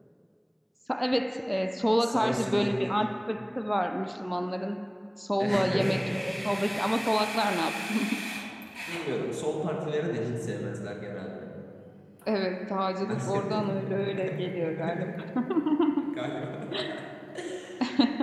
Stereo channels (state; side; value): identical; both; correlation 1.00